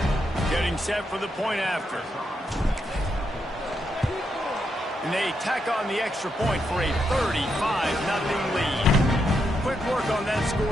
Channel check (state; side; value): normal; both; correlation 0.81